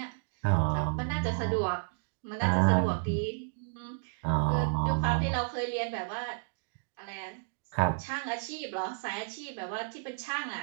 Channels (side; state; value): left; silent; digital silence